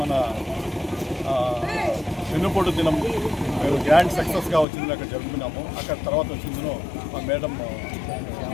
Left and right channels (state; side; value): drops out; right; at 4.7 s